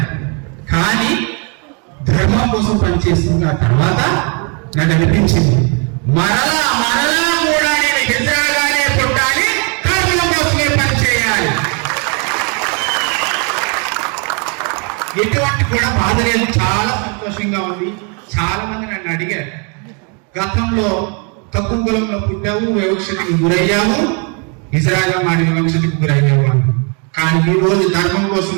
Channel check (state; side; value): quieter; left; 35.7 dB